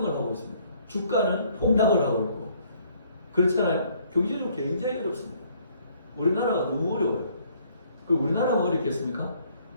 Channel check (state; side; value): inverted; both; correlation -0.63